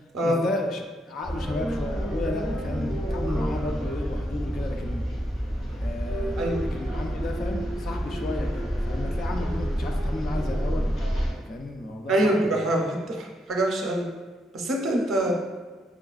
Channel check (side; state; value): both; normal; correlation 0.80